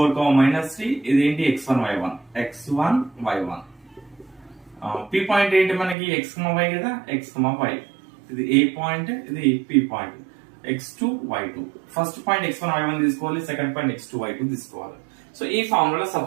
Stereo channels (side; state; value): left; drops out; at 6.0 s